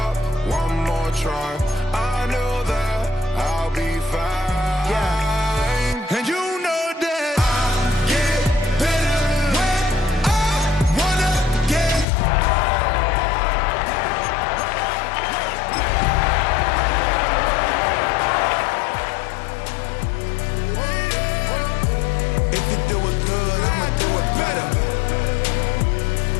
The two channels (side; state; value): right; drops out; at 12.1 s